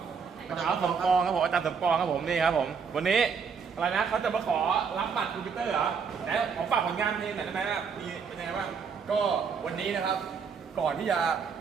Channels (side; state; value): left; quieter; 6.0 dB